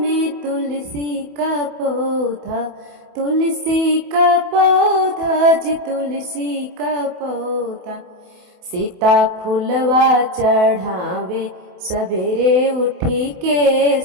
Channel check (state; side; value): late; left; 28 ms